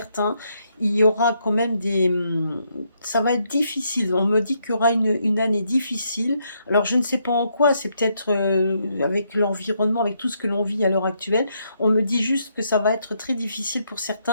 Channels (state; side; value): inverted; both; correlation -0.76